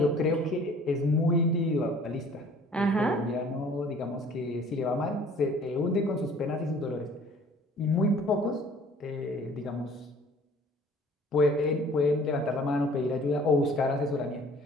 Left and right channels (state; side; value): normal; both; correlation 0.52